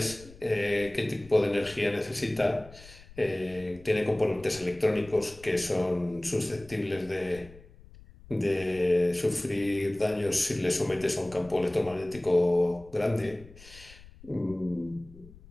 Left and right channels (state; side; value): noise; left; rumble, 21 dB below the sound